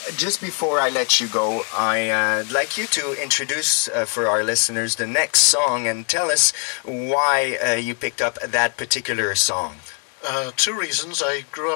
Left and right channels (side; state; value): right; quieter; 37.2 dB